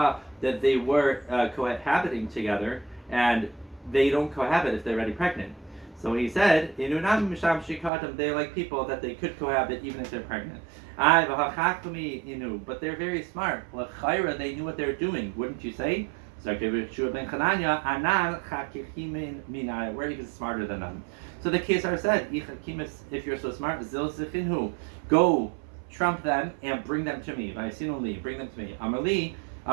that they were cohabiting together, and they don't cohabit if they're already pregnant. So he said, they're like people that they could cohabit even if they're pregnant. But they're very smart. They knew what they're doing, wouldn't you say? So we're even smarter than them. So the Kesar said, if you're so smart, go trump them and bring them to me. Bring them to me. Amarli.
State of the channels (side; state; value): left; drops out; at 7.9 s